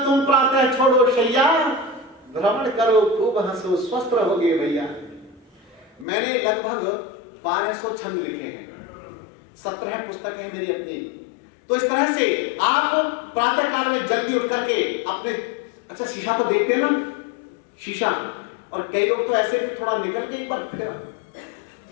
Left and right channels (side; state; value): right; drops out; at 6.1 s